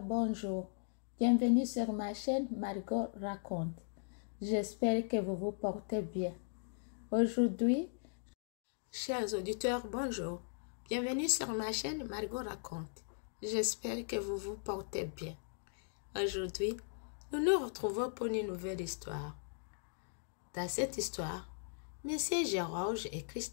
bonjour. Bienvenue sur ma chaîne Margot Raconte. J'espère que vous vous portez bien. Aujourd'hui, chers auditeurs, bonjour. Bienvenue sur ma chaîne Margot Raconte. J'espère que vous vous portez bien. Aujourd'hui, nous nous retrouvons pour une nouvelle histoire. Dans cette histoire, Messieurs Georges et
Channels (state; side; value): silent; right; digital silence